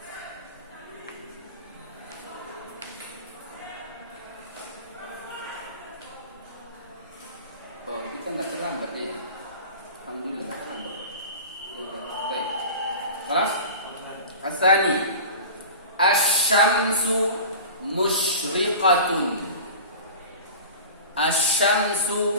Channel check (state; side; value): inverted; both; correlation -0.36